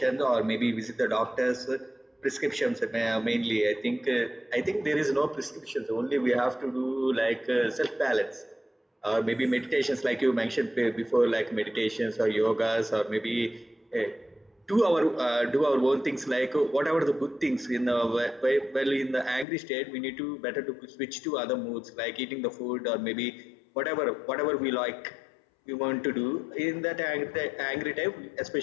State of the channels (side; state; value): right; drops out; at 19.5 s